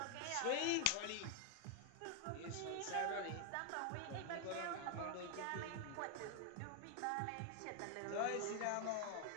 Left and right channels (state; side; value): different; both; correlation 0.00